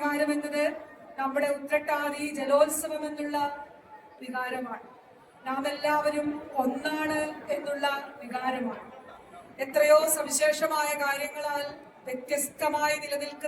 എന്നത് നമ്മുടെ ഉത്രട്ടാതി ജലോത്സവം എന്നുള്ള വികാരമാണ്. നാം എല്ലാവരും ഒന്നാണ് എന്നുള്ള വികാരമാണ്. എത്രയോ സവിശേഷമായ കാര്യങ്ങളാൽ വ്യത്യസ്തമായി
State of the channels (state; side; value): identical; both; correlation 1.00